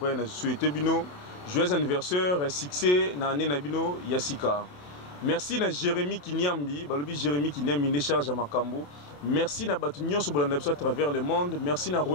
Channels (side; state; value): right; late; 28 ms